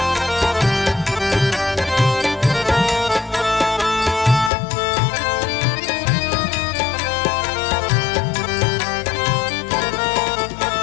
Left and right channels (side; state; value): right; drops out; at 4.5 s